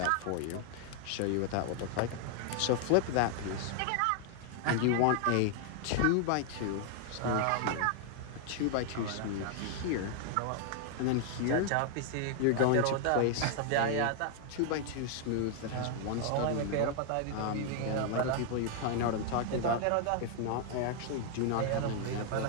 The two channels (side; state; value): both; different; correlation 0.00